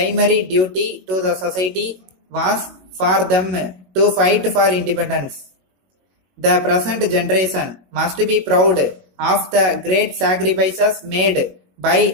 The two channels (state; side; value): late; left; 21 ms